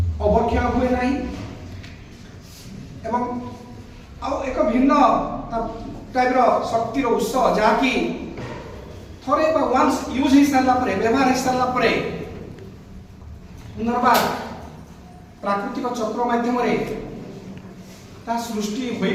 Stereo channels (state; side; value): identical; both; correlation 1.00